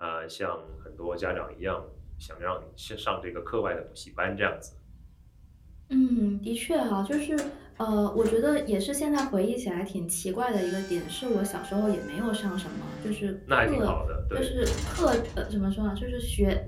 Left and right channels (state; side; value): identical; both; correlation 1.00